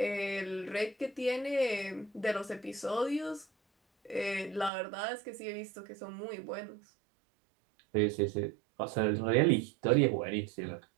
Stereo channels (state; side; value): drops out; left; at 4.7 s